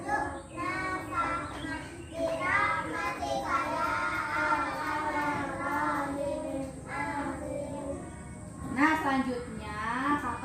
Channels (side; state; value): both; identical; correlation 1.00